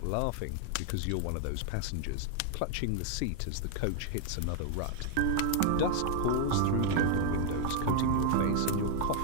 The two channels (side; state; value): both; different; correlation 0.00